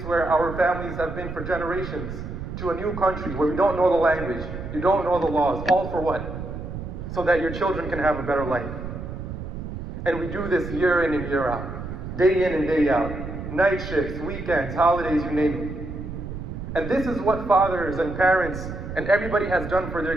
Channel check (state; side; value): noise; right; rumble, 8 dB below the sound